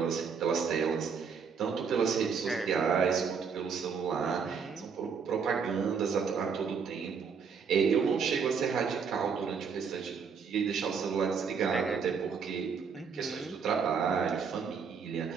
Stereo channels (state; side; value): quieter; left; 6.0 dB